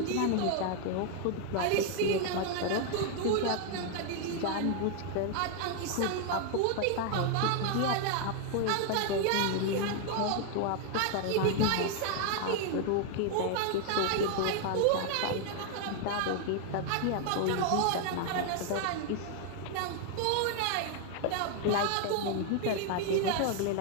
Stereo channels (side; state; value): both; different; correlation 0.00